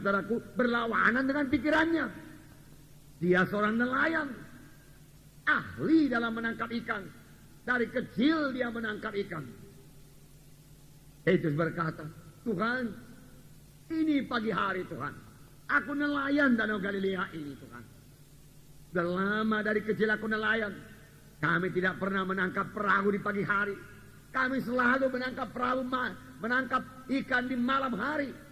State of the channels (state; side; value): identical; both; correlation 1.00